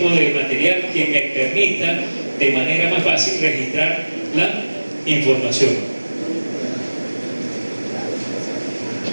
de material que me permita de manera más fácil registrar la información.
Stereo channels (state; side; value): inverted; both; correlation -1.00